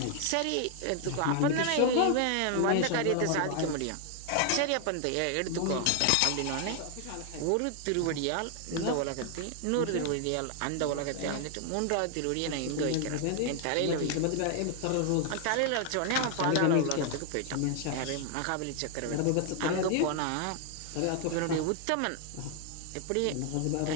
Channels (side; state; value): both; different; correlation 0.00